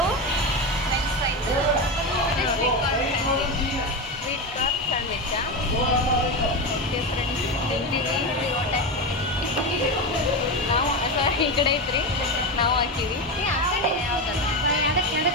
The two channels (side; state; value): both; normal; correlation 0.17